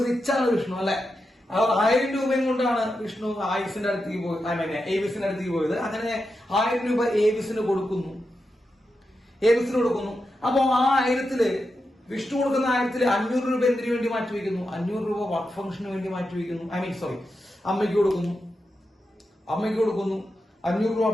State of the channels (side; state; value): both; normal; correlation 0.88